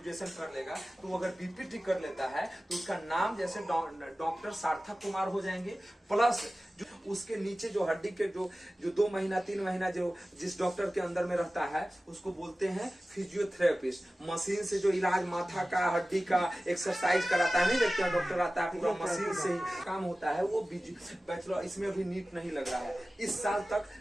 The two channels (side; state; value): both; normal; correlation 0.96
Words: कर लेगा, तो अगर बीपीटी कर लेता है तो उसका नाम जैसे डॉक्टर सार्थक कुमार हो जाएंगे, प्लस जो उसके नीचे जो हड्डी के जो 2 महीना 3 महीना जो जिस डॉक्टर के अंदर में रहता है उसको बोलते हैं फिजियोथेरेपिस्ट। मशीन से जो इलाज माथा का हड्डी का एक्सरसाइज कराता है, नहीं देखते हैं डॉक्टर आता है पूरा मशीन से ही काम होता है, वो बैचलर। इसमें अभी नीट नहीं लग रहा है। इस साल तक